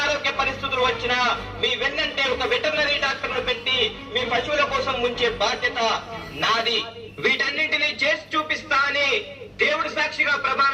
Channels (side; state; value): both; identical; correlation 1.00